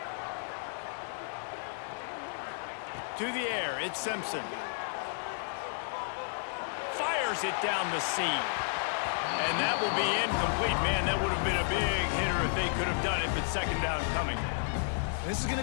To the air, it's Simpson. Fires it down the seam. And that will be incomplete. Man, that would have been a big hit coming. This is going to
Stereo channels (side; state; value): right; silent; digital silence